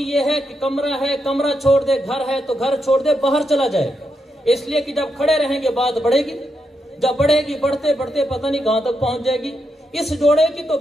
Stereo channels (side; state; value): both; normal; correlation 0.83